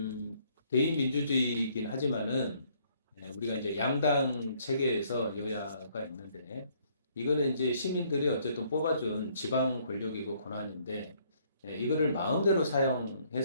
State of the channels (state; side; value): inverted; both; correlation -0.65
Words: 대의 민주주의이긴 하지만은 우리가 이제 양당 체계에서 여야가 있는데 이거는 이제 시민들이 어쨌든 뽑아준 지방 권력이고 권한인데 이거를 마음대로